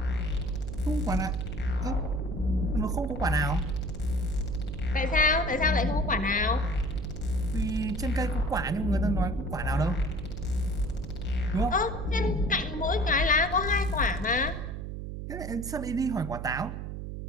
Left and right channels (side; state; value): right; noise; hum, 6 dB below the sound